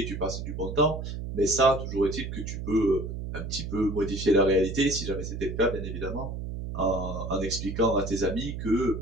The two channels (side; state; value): right; noise; hum, 6 dB below the sound